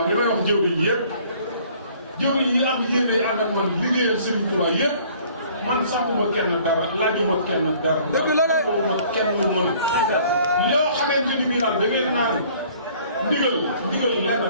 li may wax jëwriñ yi yëpp jëwriñ yi am yéene ànd ak man liggéeyal Serigne Touba yëpp man sàmmuma kenn dara laajuma kenn dara. dëgg la de ma kenn lu mën. loo xamante ni bii daal da ngeen naan ndigal lenn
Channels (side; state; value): both; inverted; correlation -0.55